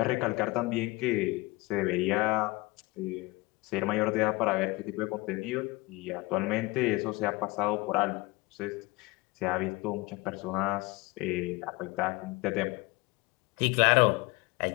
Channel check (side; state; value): right; quieter; 23.0 dB